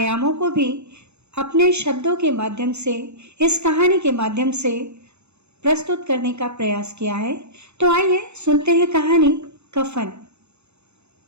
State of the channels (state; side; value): late; left; 0.81 ms